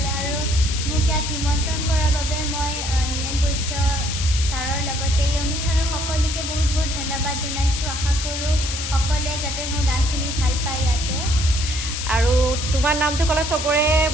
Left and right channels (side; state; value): left; noise; hiss, 5 dB below the sound